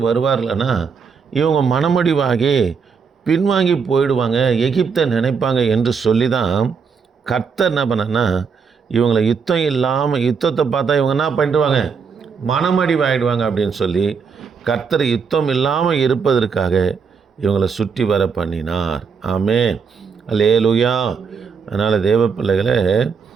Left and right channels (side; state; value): left; quieter; 5.8 dB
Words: வருவார்கள்னா இவங்க மனமடிவாகி பின்வாங்கி போயிடுவாங்க, எகிப்தை நினைப்பாங்க என்று சொல்லி தான் கர்த்தர் என்ன பண்ணனா, இவங்களை யுத்தத்தை பார்த்தா இவங்க என்ன பண்ணிடுவாங்க, மனமடிவாயிடுவாங்க அப்படின்னு சொல்லி கர்த்தர் யுத்தம் இல்லாமல் இருப்பதற்காக இவங்களை சுற்றி வர பண்ணினார். ஆமென், அல்லேலூயா. அதனால் தேவ பிள்ளைகளை